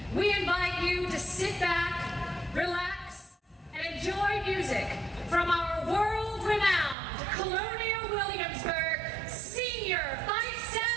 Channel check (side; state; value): left; drops out; at 7.0 s